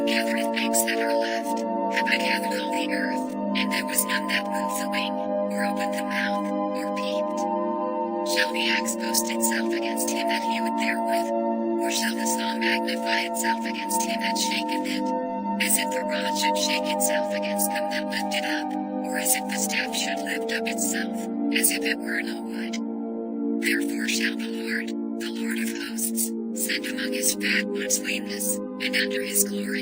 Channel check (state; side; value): identical; both; correlation 1.00